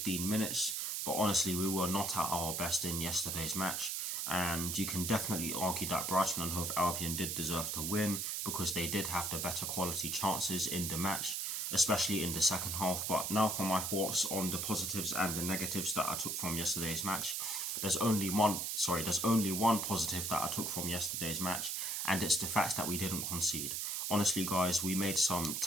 minutes. But honestly, we were not at our best in yesterday's match, and you can definitely argue that Brighton and Hove Albion did deserve to win, because they did have the better quality chances in the match, especially in the second half. But now for my thoughts on the positives and the negatives that I took from yesterday's match. There's only one positive that I took from yesterday's match, and it's the fact that we didn't concede. Honestly guys, we made some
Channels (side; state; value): right; noise; hiss, 1 dB below the sound